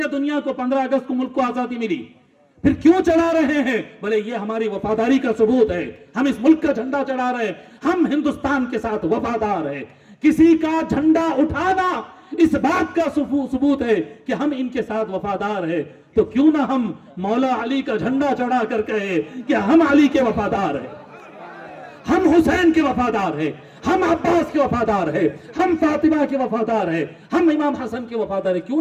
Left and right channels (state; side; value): identical; both; correlation 1.00